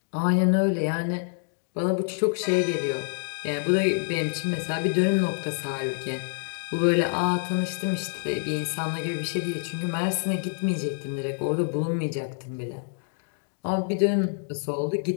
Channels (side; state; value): right; silent; digital silence